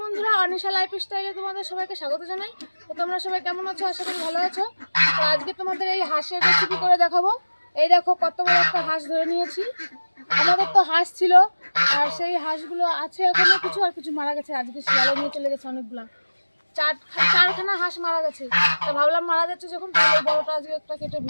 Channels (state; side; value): inverted; both; correlation -1.00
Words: বন্ধুরা, অনিশা লাইফস্টাইলে তোমাদের সবাইকে স্বাগত জানাই। তো তোমরা সবাই কেমন আছো? আশা করি ভালো আছো। তো আজকে তোমাদের এই হাঁসের রেসিপি করে দেখাবো। এই দেখো কত বড় একটা হাঁস ধরে নিয়েছি। আমাদের তো হাঁস ছিল, আর সেই হাঁসগুলো আছে এখনো কিছু, আর কিছু মারা গেছে। আজকে শিয়ালে নিয়ে চলে গেছে অনেকগুলা। চারখানা হাঁস মারা গেছে। তো ভাবলাম মারা যাচ্ছে যখন, তাহলে বড়টা আজকে একটা কেটে